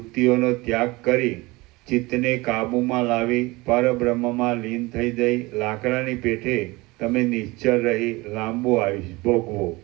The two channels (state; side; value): quieter; left; 22.5 dB